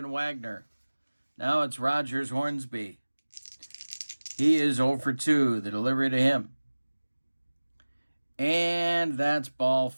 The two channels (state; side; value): inverted; both; correlation -1.00